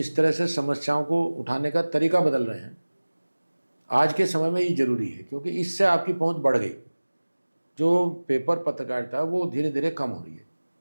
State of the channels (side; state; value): both; inverted; correlation -1.00